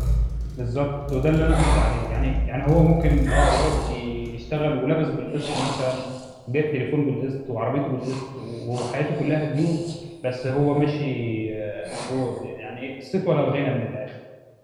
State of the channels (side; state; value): both; identical; correlation 1.00